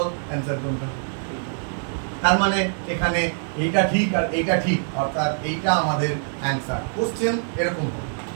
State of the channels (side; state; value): left; silent; digital silence